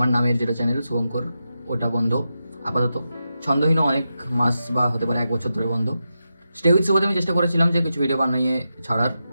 নামের যেটা চ্যানেল শুভঙ্কর ওটা বন্ধ আপাতত। ছন্দহীনও অনেক মাস বা হতে পারে 1 বছর ধরে বন্ধ। স্টে উইথ শুভতে আমি চেষ্টা করেছিলাম যে কিছু ভিডিও বানিয়ে ছাড়ার,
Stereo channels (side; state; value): both; inverted; correlation -0.89